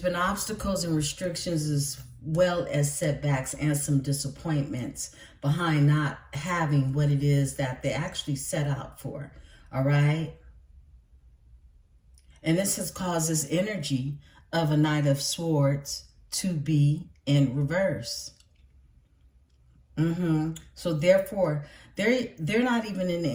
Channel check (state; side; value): identical; both; correlation 1.00